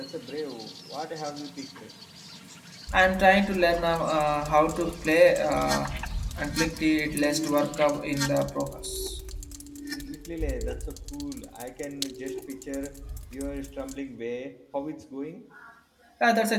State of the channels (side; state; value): both; identical; correlation 1.00